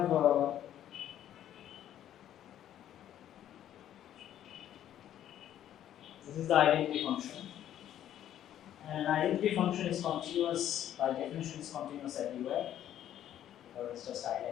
this is the identity function, and an identity function is continuous by definition, is continuous everywhere, or it's just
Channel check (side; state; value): right; quieter; 11.2 dB